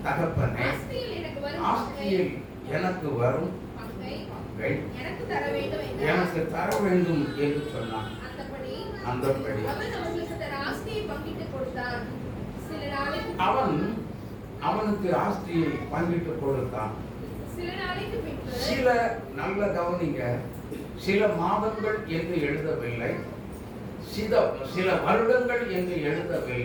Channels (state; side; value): identical; both; correlation 1.00